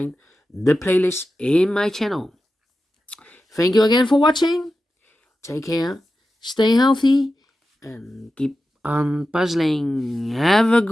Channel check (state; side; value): normal; both; correlation 0.92